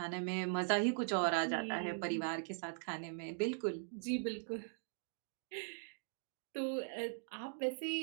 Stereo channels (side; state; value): left; silent; digital silence